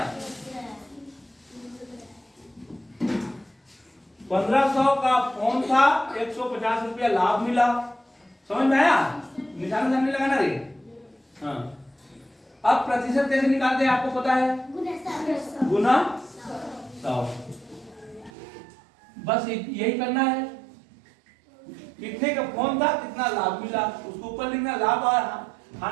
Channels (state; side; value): drops out; left; at 18.3 s